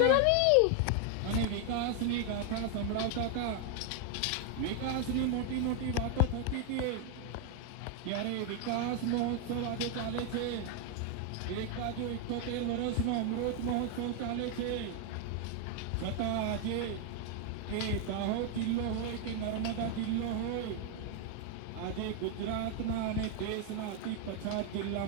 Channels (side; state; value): both; different; correlation 0.01